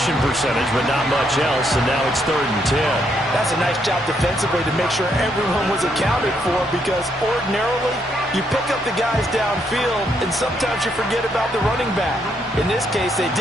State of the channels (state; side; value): normal; both; correlation 0.75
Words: percentage, but not much else, and now it's 3rd and 10. That's a nice job defensively to make sure everyone was accounted for because ordinarily you pick up the guys downfield, and sometimes you forget about the running back. In this case, they